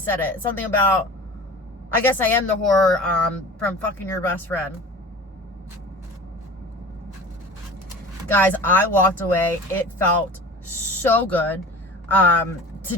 it. Something about, I guess I am the whore, from fucking your best friend. Guys, I walked away. It felt so good, to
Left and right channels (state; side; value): normal; both; correlation 0.38